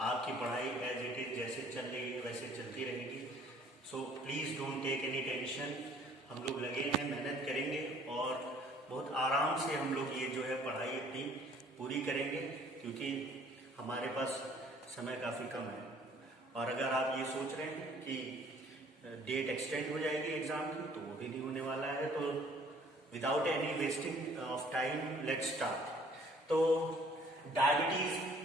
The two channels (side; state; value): both; normal; correlation 0.57